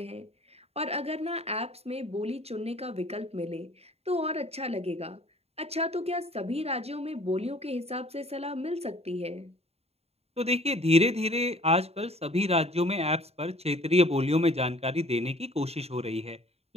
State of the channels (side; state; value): left; late; 0.30 ms